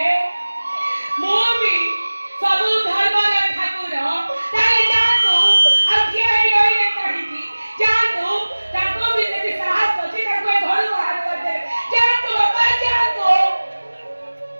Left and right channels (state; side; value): inverted; both; correlation -1.00